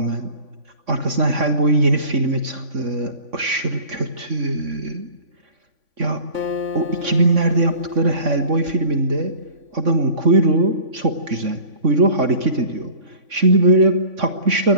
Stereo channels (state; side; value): late; left; 3.6 ms